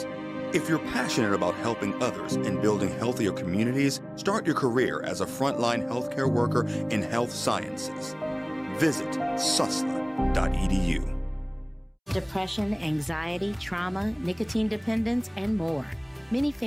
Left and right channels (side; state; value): both; identical; correlation 1.00